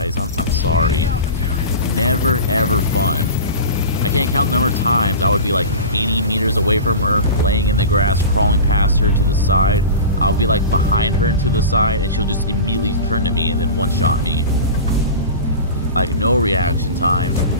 I'm sorry. Never ever fun. I can't count the number of times I would be like 80 meters away from her, laying in the grass, crawling past her to the side. I'll be like behind her and to the side, and she'll just immediately turn to me and then one-shot me. Like, no reaction time.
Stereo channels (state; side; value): inverted; both; correlation -0.32